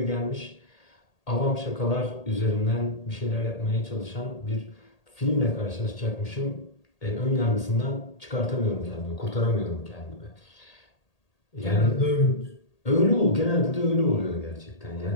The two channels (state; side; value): late; right; 1.8 ms